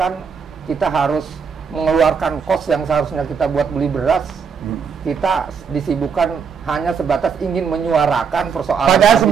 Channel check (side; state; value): left; quieter; 6.2 dB